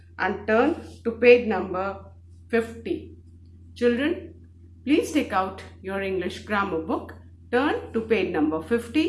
and turn to page number 50. Children, please take out your English grammar book, turn to page number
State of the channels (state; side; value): identical; both; correlation 1.00